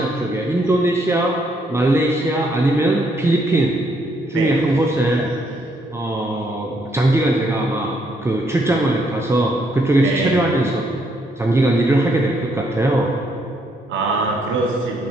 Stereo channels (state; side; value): normal; both; correlation 0.72